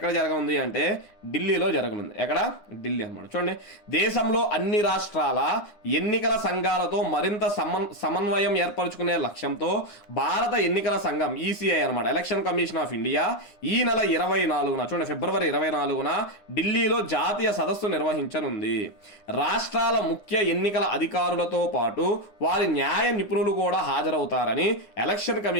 జరగనుంది అంటే ఢిల్లీలో జరగనుంది. ఎక్కడ? ఢిల్లీ అన్నమాట. చూడండి, దేశంలో అన్ని రాష్ట్రాల ఎన్నికల సంఘాలతో మరింత సమన్వయం ఏర్పరచుకునే లక్ష్యంతో భారత ఎన్నికల సంఘం ఈసీఐ అనమాట, ఎలక్షన్ కమిషన్ ఆఫ్ ఇండియా, ఈ నెల 24న, చూడండి ఫిబ్రవరి 24న ఢిల్లీలో జాతీయ సదస్సు నిర్వహించనుంది. రాష్ట్రాల ముఖ్య ఎన్నికల అధికారులతో పాటు వారి న్యాయ నిపుణులు కూడా హాజరవుతారని ఎలక్షన్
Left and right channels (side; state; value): right; late; 9.8 ms